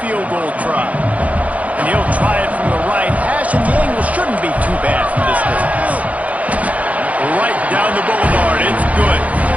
field goal try. And he'll try it from the right hash, and the angle shouldn't be too bad from this distance. Right down the boulevard. It's good.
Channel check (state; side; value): late; left; 0.068 ms